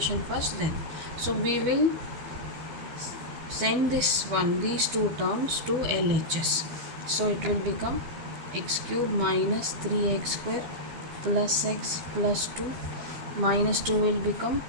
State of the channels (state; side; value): late; left; 13 ms